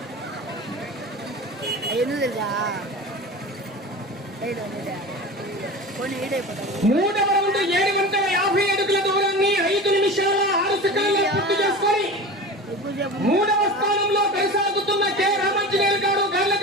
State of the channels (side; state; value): both; normal; correlation 0.32